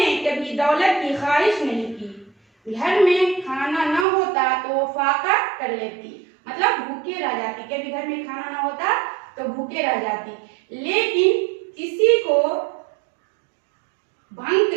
कभी दौलत की ख्वाहिश नहीं की। घर में खाना न होता तो वो फाका कर लेती, मतलब भूखे रह जाती। कभी घर में खाना ना होता तो भूखे रह जाती, लेकिन किसी को भंग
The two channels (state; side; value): drops out; left; at 4.0 s